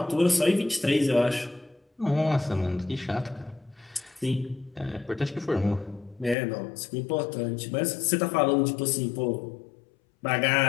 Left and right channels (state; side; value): drops out; right; at 6.4 s